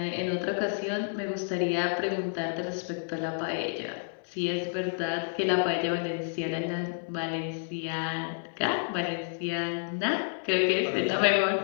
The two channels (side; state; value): right; silent; digital silence